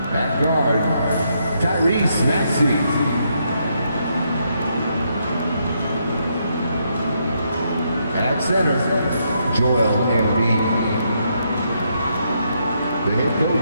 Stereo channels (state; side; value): inverted; both; correlation -0.77